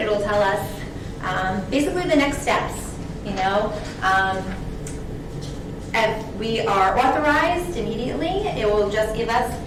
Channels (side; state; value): both; identical; correlation 1.00